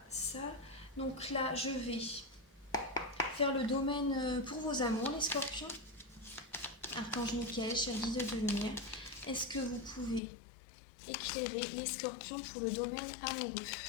ça. Donc là, je vais faire le domaine pour vos amours, les scorpions. Archange Michael, cher guide de lumière, est-ce que vous pouvez éclairer les scorpions pour le domaine amoureux?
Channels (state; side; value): drops out; right; at 10.2 s